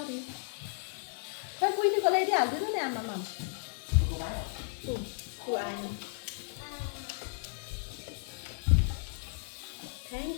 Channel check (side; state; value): right; silent; digital silence